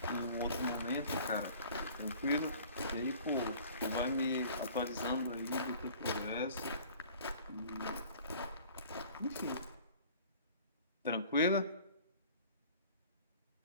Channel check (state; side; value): inverted; both; correlation -0.48